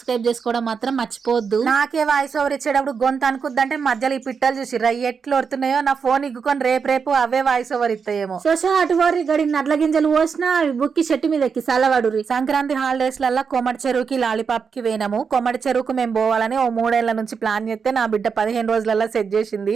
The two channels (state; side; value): quieter; left; 5.9 dB